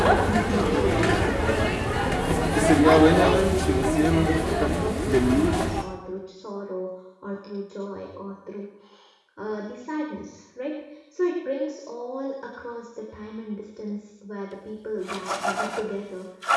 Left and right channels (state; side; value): identical; both; correlation 1.00